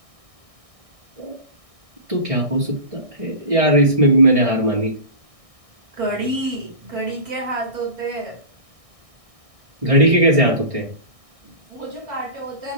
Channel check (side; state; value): left; late; 1.6 ms